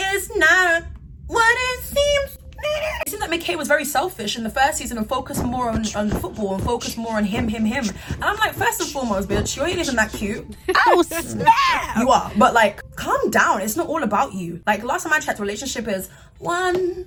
not what it seems. It seems like McKay was very selfish in the first season and focused more on football and focused more on him. And I'm like, first and foremost, bitch, you ain't even that cute. Oh, snap! You are, but like, calm down. It's not all about you. Like, last time I checked, relationship is 1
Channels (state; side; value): identical; both; correlation 1.00